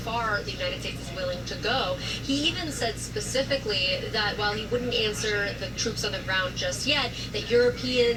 the United States is willing to go. He even said specifically that while he wouldn't answer the troops on the ground just yet, that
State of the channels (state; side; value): identical; both; correlation 1.00